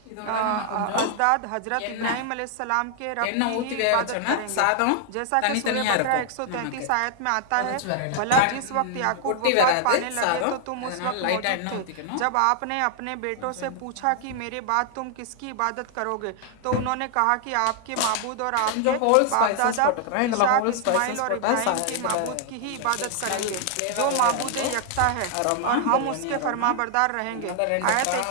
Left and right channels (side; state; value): both; different; correlation 0.00